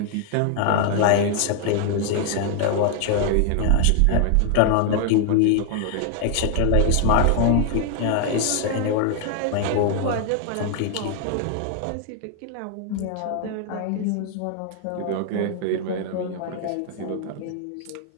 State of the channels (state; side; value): different; both; correlation 0.00